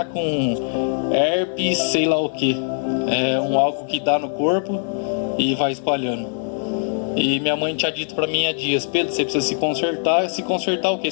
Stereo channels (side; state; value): right; silent; digital silence